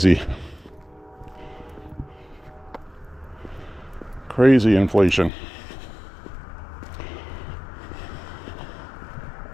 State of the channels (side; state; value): right; drops out; at 5.3 s